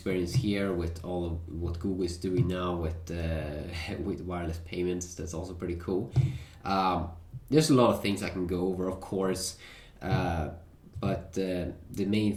here with all of what Google is doing now with with wireless payments. That's also pretty cool. There's a lot of things I can go over, of course, but the main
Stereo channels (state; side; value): identical; both; correlation 1.00